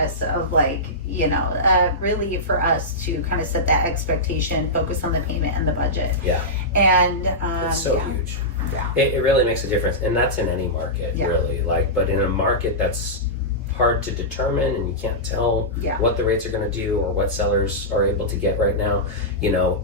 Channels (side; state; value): both; normal; correlation -0.13